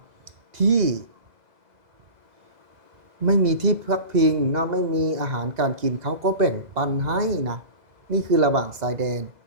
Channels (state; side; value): late; left; 2.0 ms